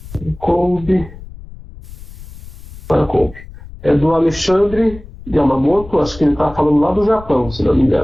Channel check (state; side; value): noise; left; rumble, 16 dB below the sound